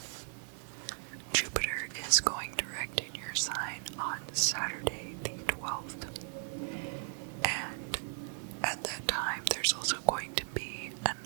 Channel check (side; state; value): left; silent; 54 dB below the other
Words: Jupiter is going direct in your sign on Saturday the 12th. And at that time, there's also going to be an